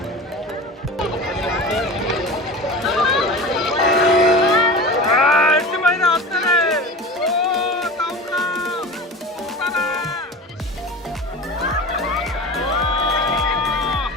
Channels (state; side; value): normal; both; correlation 0.33